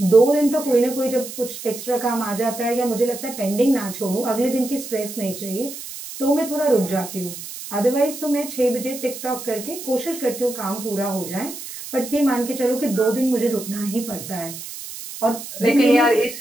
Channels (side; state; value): right; noise; hiss, 11 dB below the sound